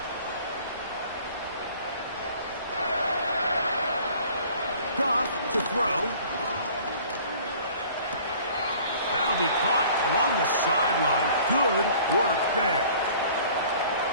Goff to throw. That'll be caught along the sideline. Good work there.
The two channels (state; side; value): inverted; both; correlation -0.50